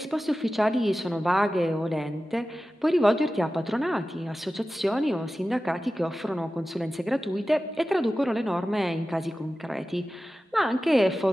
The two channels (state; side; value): normal; both; correlation 0.94